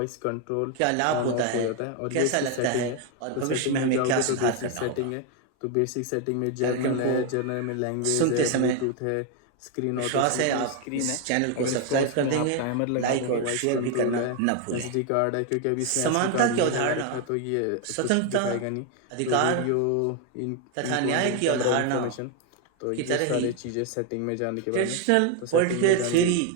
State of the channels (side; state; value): both; different; correlation 0.01